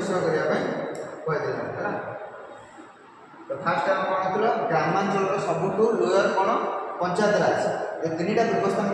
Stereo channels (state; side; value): identical; both; correlation 1.00